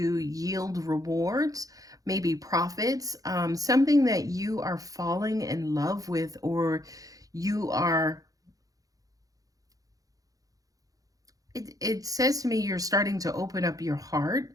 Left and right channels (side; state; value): left; late; 0.17 ms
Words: yield rewards, maybe profits, something that you are falling in love with, or you are, it says to me you're starting to open up your heart